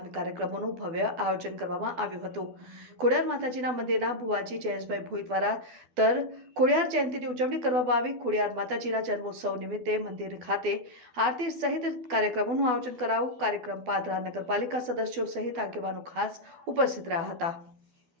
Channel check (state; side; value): late; left; 12 ms